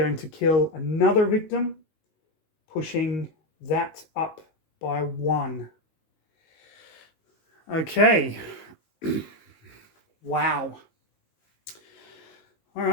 to kill another victim, pushing that up by 1. Okay. Wow. All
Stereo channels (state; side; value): late; right; 19 ms